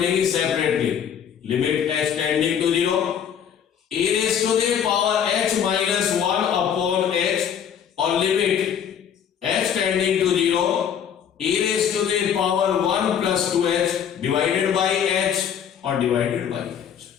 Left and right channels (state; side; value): quieter; right; 8.5 dB